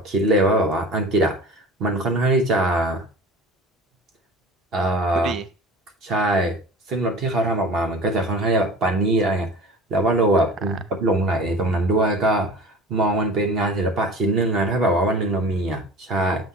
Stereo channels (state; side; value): normal; both; correlation 0.39